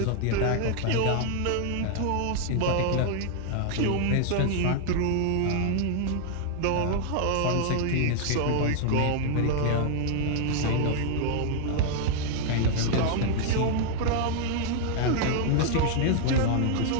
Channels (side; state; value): both; different; correlation 0.00